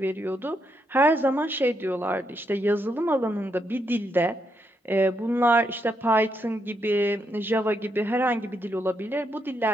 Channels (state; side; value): normal; both; correlation 0.79